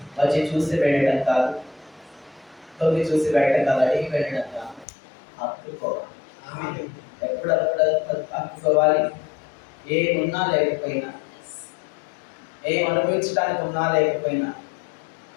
వచ్చి చూసి వెళ్ళడం కాదు, తొమ్మిది చూసి వెళ్ళడం కాదు, అడిగి వెళ్ళడం కాదు, హత్తుకోవాలి. ఎప్పుడప్పుడు హత్తుకోవాలి. ఏమున్నా లేకపోయినా, ఏం అనుభవించడానికి ఉన్నా లేకపోయినా,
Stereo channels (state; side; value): drops out; right; at 4.9 s